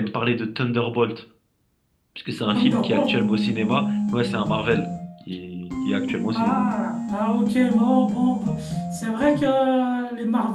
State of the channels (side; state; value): both; identical; correlation 1.00